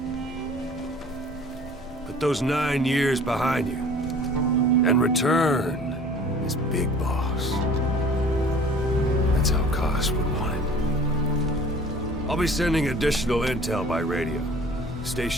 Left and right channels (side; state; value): both; normal; correlation 0.48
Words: Put those 9 years behind you, and return as Big Boss. That's how Koss would want it. I'll be sending additional intel by radio. Stay